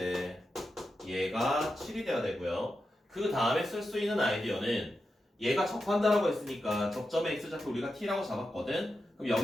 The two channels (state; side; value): normal; both; correlation 0.89